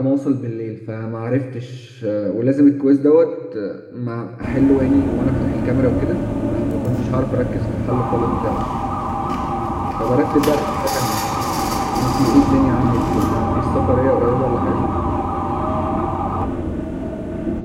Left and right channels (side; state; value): both; identical; correlation 1.00